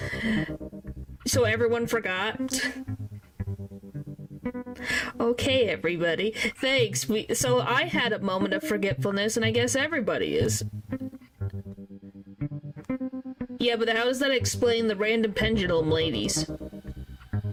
So everyone forgot? Okay, everybody. Thanks. So I had a moment of forgetfulness, and I guess everybody is. Yeah, but how does that explain the random pendulum ladies?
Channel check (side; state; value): both; identical; correlation 1.00